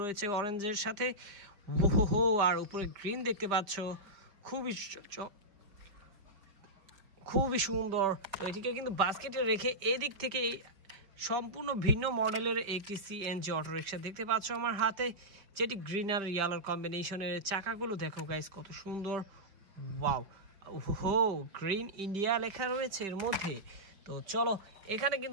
রয়েছে অরেঞ্জের সাথে। ওহো, আর উপরে গ্রিন দেখতে পাচ্ছ, খুবই সুন্দর। তো এটিকে কিন্তু বাস্কেটে রেখে এদিক থেকে সম্পূর্ণ ভিন্ন মডেলের একটি সিএনজি অটো রিক্সা দেখতে পাচ্ছ আমার হাতে, যেটি গ্রিন আর ইয়েলোর কম্বিনেশনের। চাকাগুলো দেখো গাইস, কত সুন্দর। ওয়াও, ওহো, গ্রিন ইন্ডিয়া লেখা রয়েছে এর মধ্যে। তো চলো, এখানে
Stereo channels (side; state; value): left; late; 5.0 ms